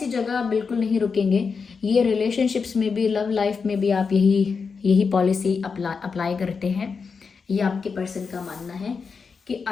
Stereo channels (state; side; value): quieter; right; 5.3 dB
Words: जगह आप बिल्कुल नहीं रुकेंगे। ये रिलेशनशिप्स में भी, लव लाइफ में भी आप यही पॉलिसी अप्लाई करते हैं। ये आपके पर्सन का मानना है कि